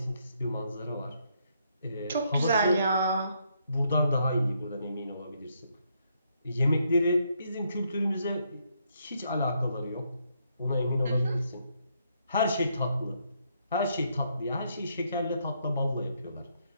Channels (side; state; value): both; inverted; correlation -0.74